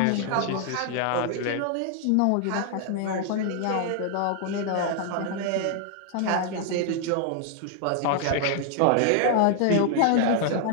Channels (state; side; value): different; both; correlation 0.00